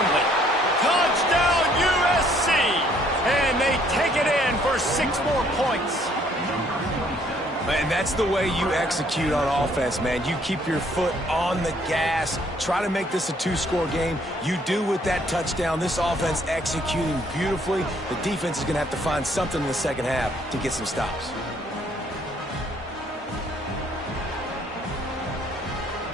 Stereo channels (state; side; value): normal; both; correlation 0.64